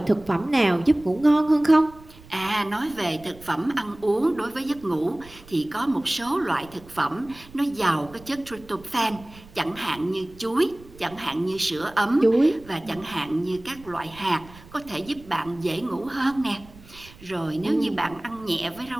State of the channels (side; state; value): right; noise; rumble, 21 dB below the sound